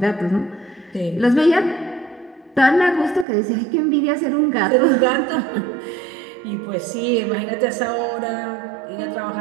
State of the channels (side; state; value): left; drops out; at 3.2 s